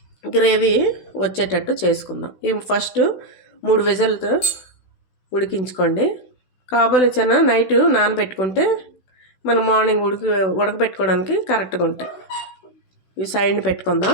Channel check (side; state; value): right; late; 16 ms